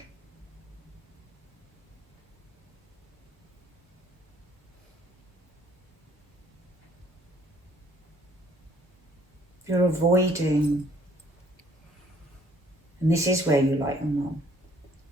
You're avoiding, and this is where you like your mum,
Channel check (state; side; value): normal; both; correlation 0.61